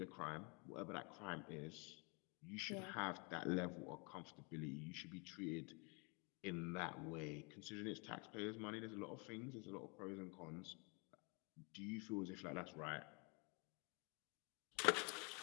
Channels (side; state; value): right; quieter; 32.7 dB